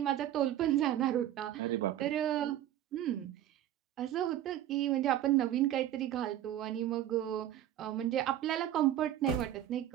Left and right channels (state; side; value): quieter; left; 12.0 dB